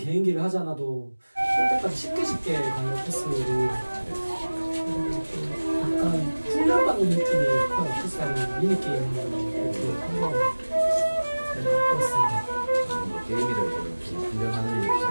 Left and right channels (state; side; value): inverted; both; correlation -1.00